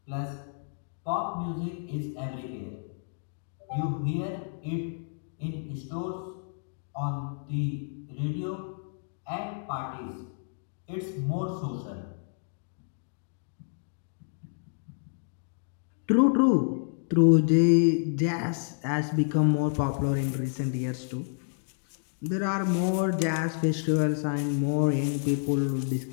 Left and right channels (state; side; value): silent; right; digital silence